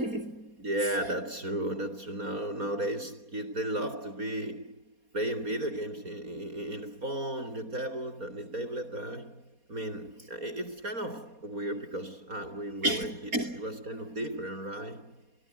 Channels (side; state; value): left; late; 4.2 ms